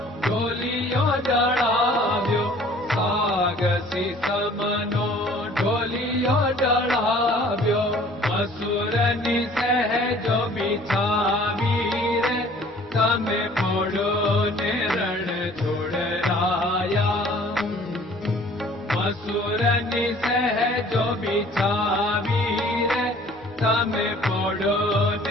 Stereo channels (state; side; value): normal; both; correlation 0.53